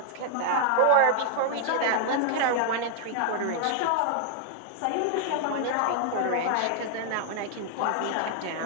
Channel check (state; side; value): different; both; correlation 0.00